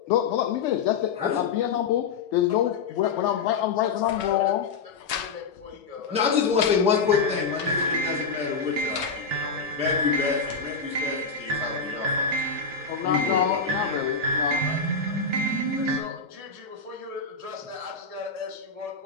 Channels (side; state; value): right; quieter; 5.0 dB